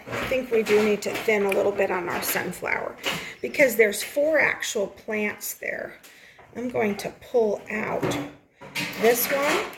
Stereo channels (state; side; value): identical; both; correlation 1.00